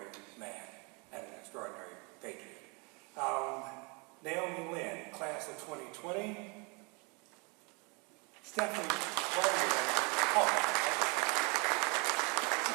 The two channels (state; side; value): quieter; left; 31.5 dB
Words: man and an extraordinary patriot. Naomi Lynn, class of 2020. Stephanie